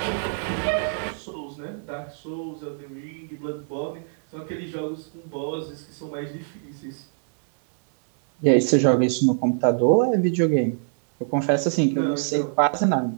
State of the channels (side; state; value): left; silent; 62 dB below the other